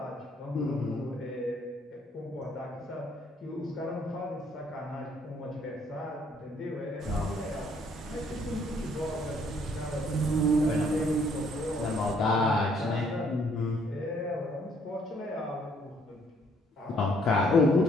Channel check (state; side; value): normal; both; correlation 0.65